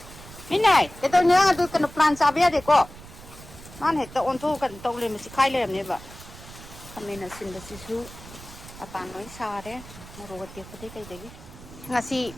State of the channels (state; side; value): noise; right; rumble, 17 dB below the sound